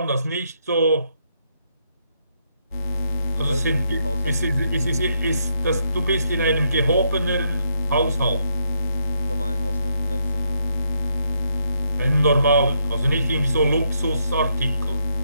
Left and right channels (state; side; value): inverted; both; correlation -0.77